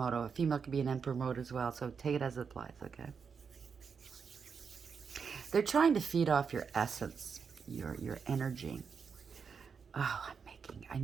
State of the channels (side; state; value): left; quieter; 6.0 dB